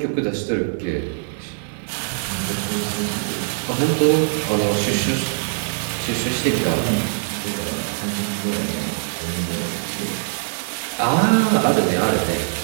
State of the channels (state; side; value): silent; left; 63 dB below the other